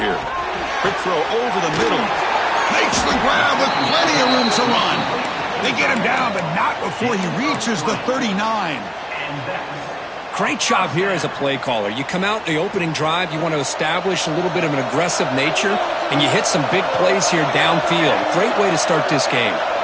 here. Quick throw over the middle. Makes the grab with plenty of room to run. They get him down, but not before he reaches the 39. Great job here as a play caller. You come out in the opening drive, you want to establish a little bit of an aggressive nature, and you hit some big plays here downfield. Great way to start this game.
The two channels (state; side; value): identical; both; correlation 1.00